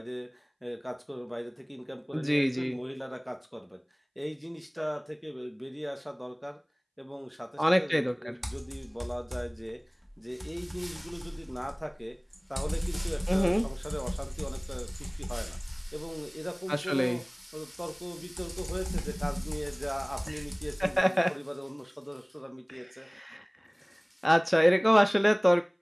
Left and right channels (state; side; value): identical; both; correlation 1.00